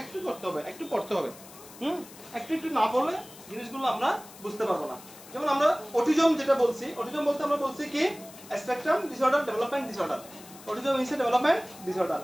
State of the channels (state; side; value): noise; left; hiss, 19 dB below the sound